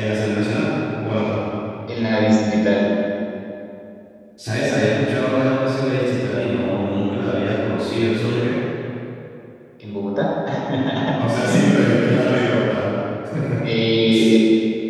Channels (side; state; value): both; identical; correlation 1.00